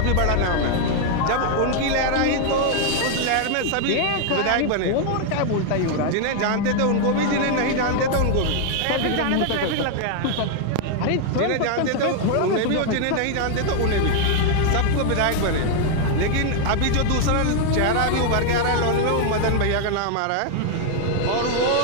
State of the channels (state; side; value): different; both; correlation 0.00